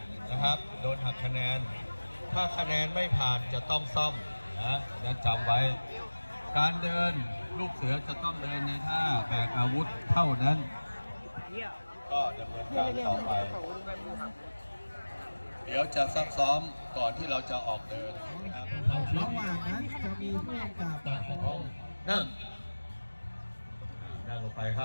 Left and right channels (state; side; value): inverted; both; correlation -1.00